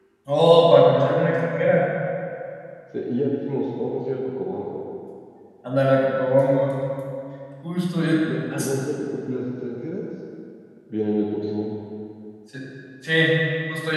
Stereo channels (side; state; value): both; identical; correlation 1.00